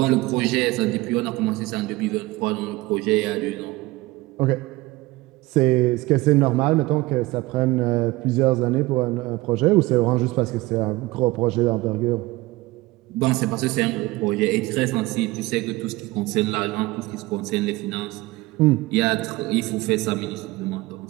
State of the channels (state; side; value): quieter; left; 20.4 dB